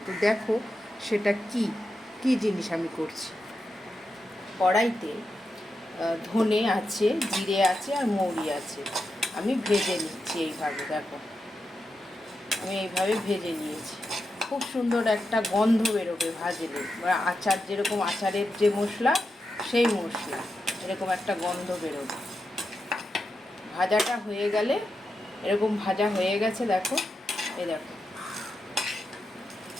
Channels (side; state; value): both; normal; correlation 0.88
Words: তো দেখো সেটা কি জিনিস আমি করছি। কড়াইতে ধনে আছে, জিরে আছে আর মৌরি আছে। আমি ভেজে নিচ্ছি এইভাবে। দেখো আমি এইভাবে ভেজে নিয়েছি। খুব সুন্দর একটা গন্ধ বেরোবে ভাজলে, বা আচার যেরকম আচারের যে মশলা, সেই মশলা এরকম একটা গন্ধ বেরোবে। ভাজাটা হয়ে গেলে, এরকম ভাজা হয়ে গেছে দেখো, এই দেখো